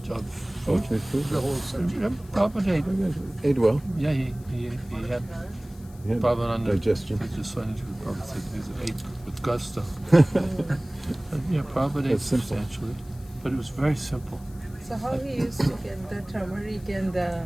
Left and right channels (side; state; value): left; noise; hiss, 25 dB below the sound